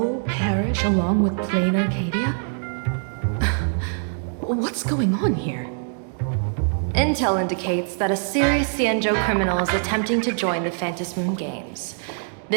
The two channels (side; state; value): left; silent; 56 dB below the other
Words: perish along with Plan Arcadia? What's going on here? Intel indicates that a serious Xianzhou criminal is attempting to join the Phantom Moon Games.